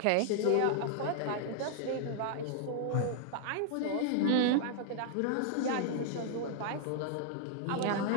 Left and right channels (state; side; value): different; both; correlation -0.01